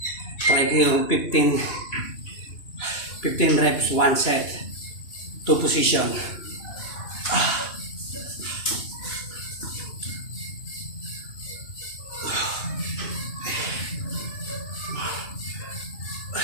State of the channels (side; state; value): right; late; 2.9 ms